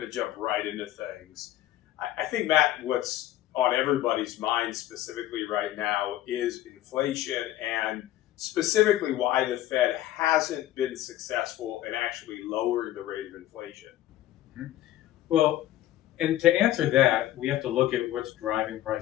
to jump right into things. I think, Matt, what's on everybody's mind specifically right now is inflation and specifically why the Fed hasn't been successful in actually lowering the rate of inflation. Well, and to answer that, we have to look at what's driving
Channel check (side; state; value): right; quieter; 13.8 dB